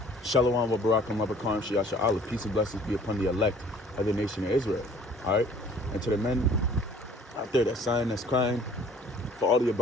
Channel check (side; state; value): both; normal; correlation 0.53